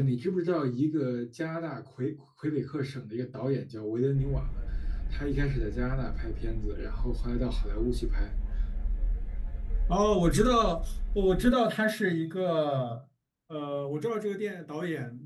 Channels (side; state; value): both; identical; correlation 1.00